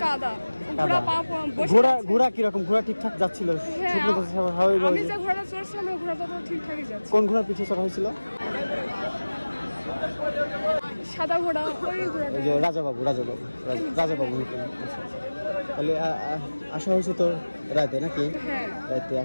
কাদা ঘোড়া কিরকম ঘোড়া ঠিকঠাক যাচ্ছিল আমি যে ঘোড়াটা চড়ছিলাম ওই ঘোড়াটা তো ঠিকঠাকই যাচ্ছে কোন ঘোড়ার পিঠে চড়া হয়েছিল সাদা ঘোড়া ওই ঘোড়াটা রাজাবাবু তাহলে আসা হয়েছে তো রাতে নাকি রাতে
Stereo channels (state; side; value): inverted; both; correlation -1.00